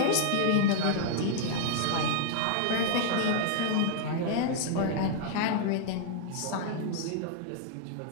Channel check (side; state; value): both; different; correlation -0.01